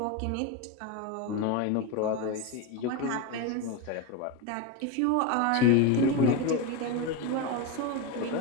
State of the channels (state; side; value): different; both; correlation 0.05